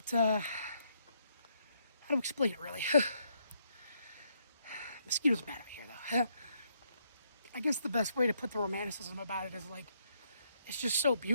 how to explain it really? Mosquitoes bad out here though. I guess the best way to put the romanticism about it is, like, it's just so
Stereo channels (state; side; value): inverted; both; correlation -0.74